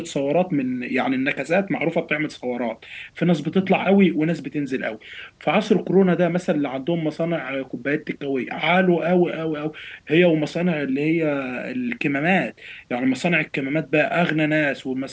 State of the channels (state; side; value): identical; both; correlation 1.00